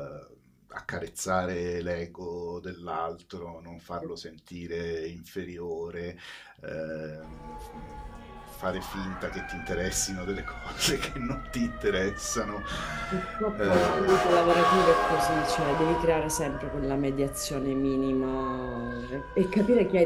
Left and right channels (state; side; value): identical; both; correlation 1.00